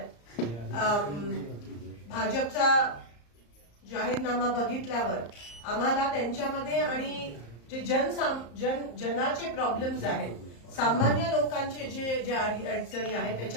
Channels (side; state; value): right; late; 34 ms